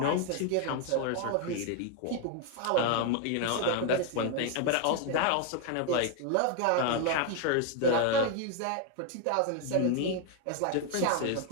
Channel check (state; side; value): different; both; correlation 0.01